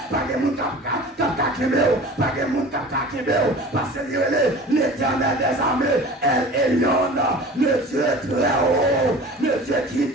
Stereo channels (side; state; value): both; normal; correlation 0.40